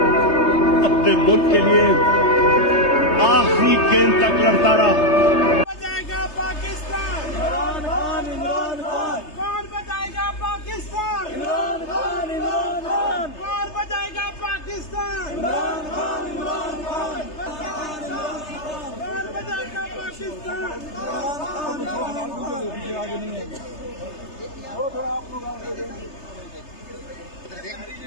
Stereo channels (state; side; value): late; right; 3.3 ms